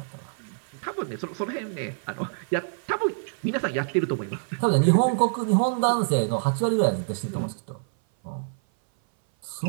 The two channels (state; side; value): silent; left; 57 dB below the other